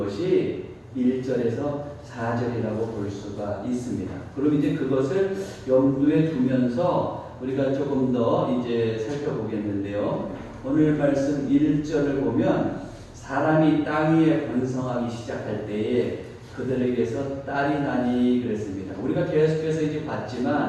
1절에서 4절이라고 볼 수가 있습니다. 그럼 이제 그것을 염두에 두면서 우리가 조금 더 이제 살펴보겠는데요. 오늘 말씀 1절을 보면 사람이 땅 위에 번성하기 시작할 때에 그들에게서 딸이 나니 그랬습니다. 우리가 계속해서 이제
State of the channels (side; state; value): both; identical; correlation 1.00